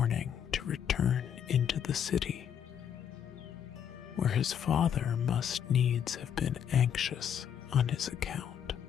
to return into the city, where his father must needs have been anxious on his account.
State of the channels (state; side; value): quieter; right; 8.6 dB